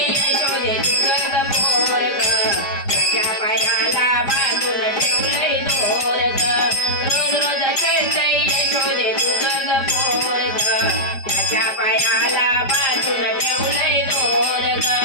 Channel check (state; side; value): late; right; 5.0 ms